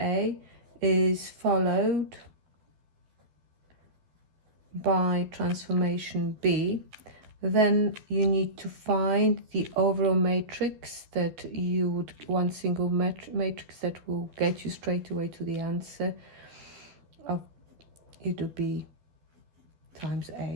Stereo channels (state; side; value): late; left; 12 ms